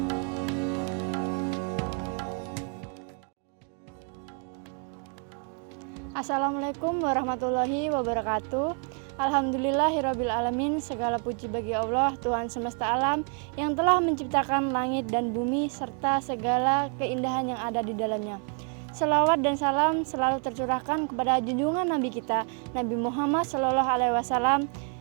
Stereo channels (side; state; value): left; quieter; 38.6 dB